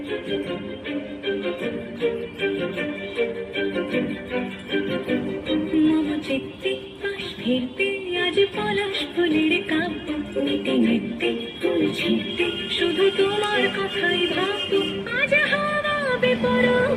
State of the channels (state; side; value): identical; both; correlation 1.00